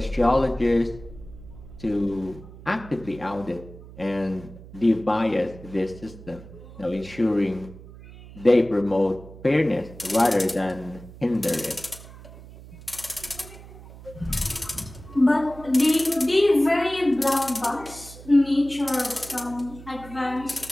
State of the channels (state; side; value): noise; right; hum, 17 dB below the sound